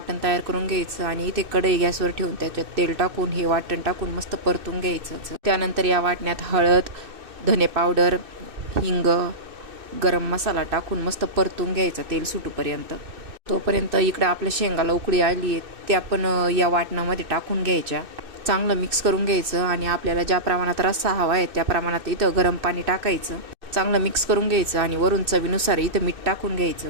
तयार करून घ्यायचं आणि इथे कढई गॅसवर ठेवून त्याच्यात तेल टाकून हे वाटण टाकून मस्त परतून घ्यायचं. त्यानंतर या वाटण्यात हळद, धने पावडर, हिंग, गरम मसाला टाकून मस्त परतून घ्यायचा तेल सुटूपर्यंत. तोपर्यंत इकडं आपल्या शेंगाला उकळी आली आहे, त्या पण या वाटणामध्ये टाकून घ्यायच्या. चांगलं मिक्स करून घ्यायचं आणि आपल्याला ज्या प्रमाणात रस्सा हवा आहे त्या प्रमाणात इथं गरम पाणी टाकायचं. चांगलं मिक्स करून घ्यायचं आणि वरून चवीनुसार इथं मीठ टाकून घ्यायचं.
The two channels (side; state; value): left; late; 2.6 ms